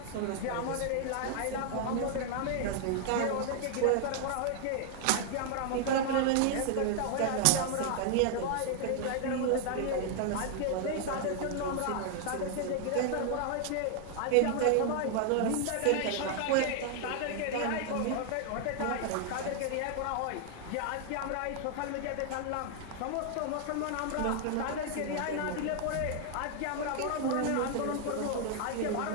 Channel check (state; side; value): different; both; correlation 0.00